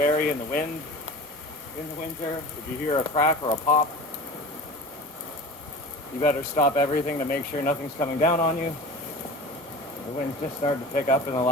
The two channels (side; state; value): both; normal; correlation 0.36